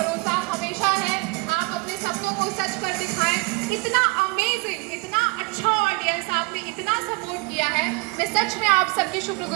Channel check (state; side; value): quieter; left; 28.2 dB